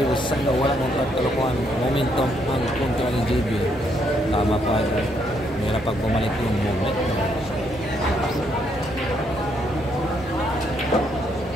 na wala mong pagkalukuhan. Momentum ang kontra ng JB. Tama pa idol. Mayroon pag bumalik yung moment.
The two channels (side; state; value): both; normal; correlation 0.73